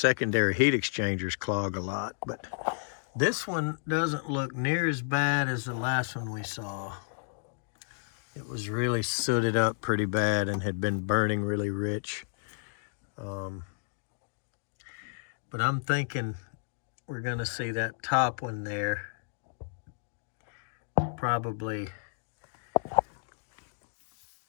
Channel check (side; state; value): right; silent; digital silence